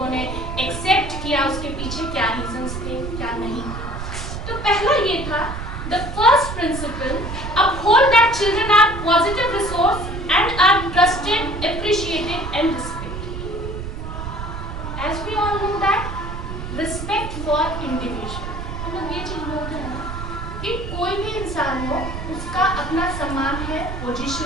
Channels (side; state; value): right; noise; rumble, 7 dB below the sound